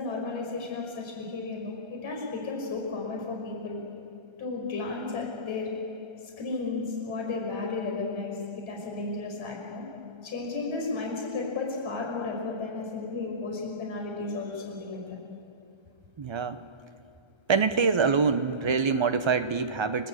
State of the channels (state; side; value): late; left; 1.3 ms